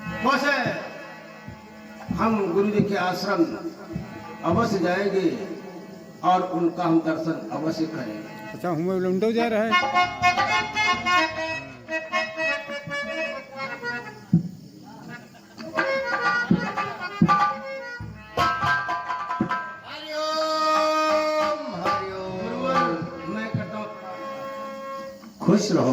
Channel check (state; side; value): identical; both; correlation 1.00